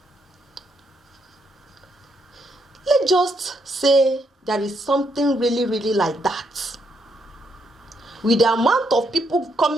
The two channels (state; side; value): normal; both; correlation 0.76